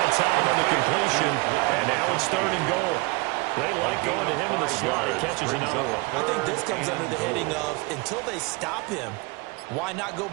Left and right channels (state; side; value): quieter; left; 26.4 dB